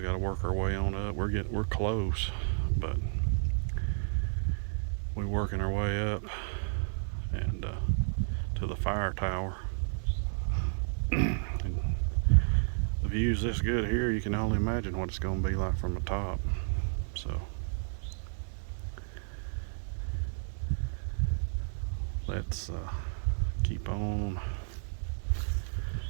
to work our way on up. We're close, but we're working our way up and to the fire tower. And the view's this good here, you can only imagine what it's going to be like from the top. So let's keep on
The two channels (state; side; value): silent; left; digital silence